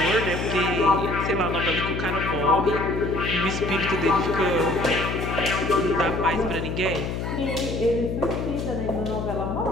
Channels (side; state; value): left; noise; hum, 3 dB below the sound